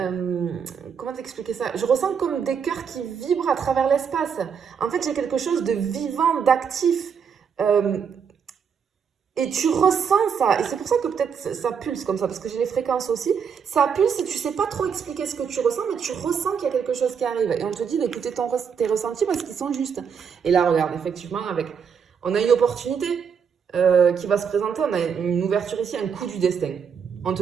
comment t'expliquer ça? Je ressens comme des cœurs qui vibrent à travers l'espace. En fait, j'ai quelque chose de vivant, d'actif. Et tu ressens ça. Et c'est pour ça que peut-être ça pulse comme ça, parce que j'ai les fréquences aussi. Ça pulse et tu sais pas trop expliquer ce que tu ressens, mais tu ressens qu'il y a quelque chose qui arrive. Et on te dit d'écouter tes ressentis parce qu'ils sont justes. Et là, regarde, effectivement, on a une opportunité qui va se présenter. On a une ouverture ici, un coup du destin. On te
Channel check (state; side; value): quieter; left; 6.8 dB